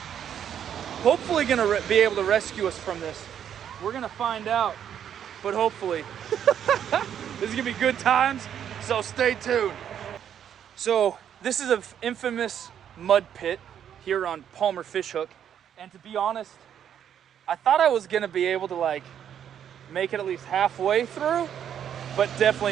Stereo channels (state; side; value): quieter; left; 9.2 dB